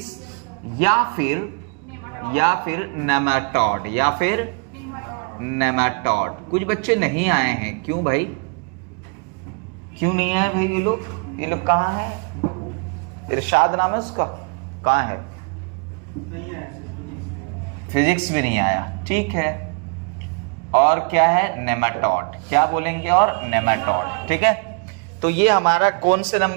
या फिर नेमाटोड या फिर नेमाटोड। कुछ बच्चे नहीं आए हैं, क्यों भाई? क्यों नहीं आए भाई? ये लोग कहाँ है? इरशाद नाम है उसका, कहाँ है? फिजिक्स भी नहीं आया। ठीक है, और क्या है? नेमाटोड। क्या बोलेंगे? और नेमाटोड। ठीक है, तो ये हमारा कौन से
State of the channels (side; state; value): left; quieter; 35.6 dB